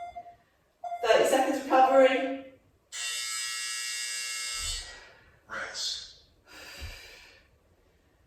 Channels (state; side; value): identical; both; correlation 1.00